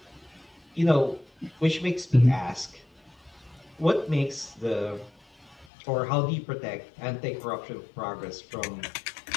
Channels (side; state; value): right; drops out; at 5.7 s